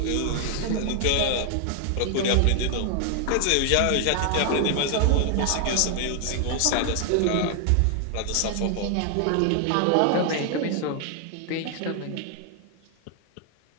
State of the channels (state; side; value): different; both; correlation 0.00